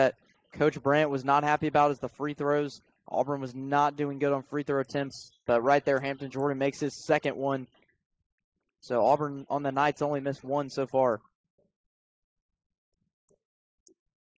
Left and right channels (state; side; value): identical; both; correlation 1.00